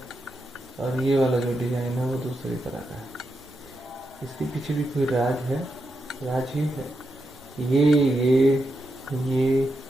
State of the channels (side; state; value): both; normal; correlation 0.85